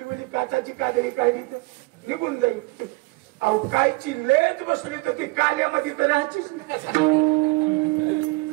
उली काचाची काजळी काढली तर निघून जाईल अहो कायची लेज बसली तर ती काल्यामध्ये तर राहायचीच नाही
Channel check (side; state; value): left; quieter; 24.3 dB